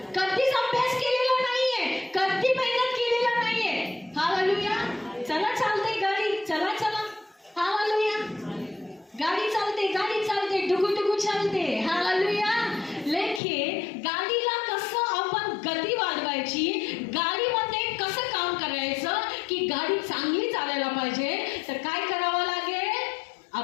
कधीच अभ्यास केलेला नाहीये, कधी मेहनत केलेला नाहीये। हालेलुया। चला चालते गाडी, चला चला। हालेलुया। गाडी चालते, डुगू चालते। हालेलुया। लेकिन गाडीला कसं आपण गती वाढवायची, गाडीमध्ये कसं काम करायचं की गाडी चांगली चालायला पाहिजे, तर काय करावं लागेल?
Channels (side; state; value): right; drops out; at 13.4 s